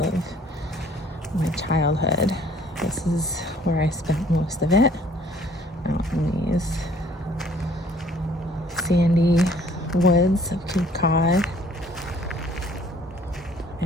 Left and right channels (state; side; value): normal; both; correlation 0.58